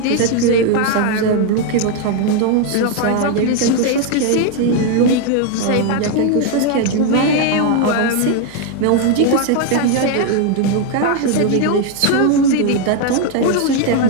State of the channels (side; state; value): both; different; correlation 0.01